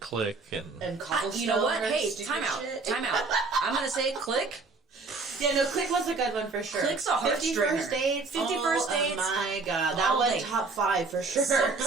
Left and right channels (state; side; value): quieter; left; 4.1 dB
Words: Click and And Cobblestone. You know what? or Hey, stupid time out. shit. Time out. I'm gonna say Click. Yeah, no, Click was a good one for sure. Click's a 50 heartstringer. First Dates. 50 First Dates. Oh my God, that All was day. top 5 for sure.